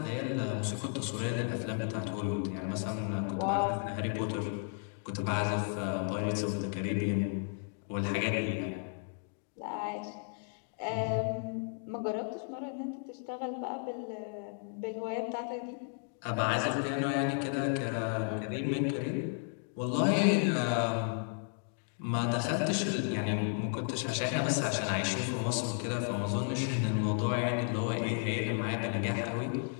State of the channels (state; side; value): silent; right; 55 dB below the other